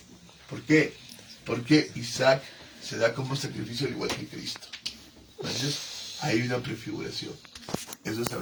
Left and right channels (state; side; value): identical; both; correlation 1.00